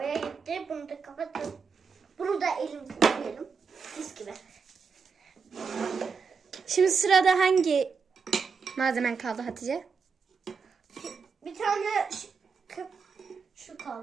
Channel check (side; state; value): left; quieter; 5.5 dB